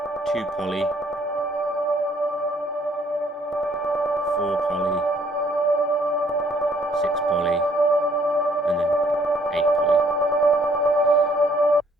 2 poly. 4 poly. 6 poly. And then 8 poly.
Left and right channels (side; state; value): both; normal; correlation 0.63